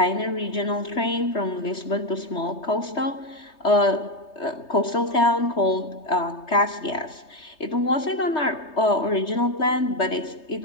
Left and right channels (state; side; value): late; right; 3.2 ms